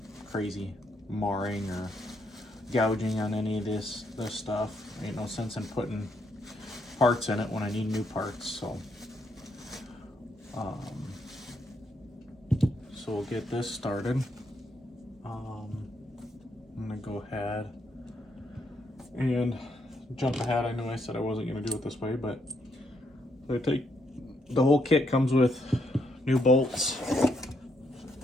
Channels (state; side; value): normal; both; correlation 0.75